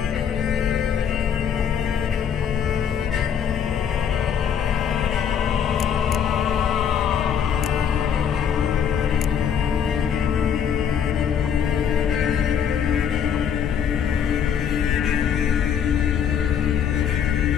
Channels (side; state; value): right; quieter; 8.1 dB